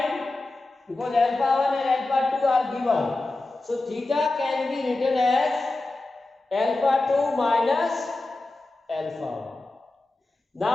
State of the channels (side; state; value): right; quieter; 3.0 dB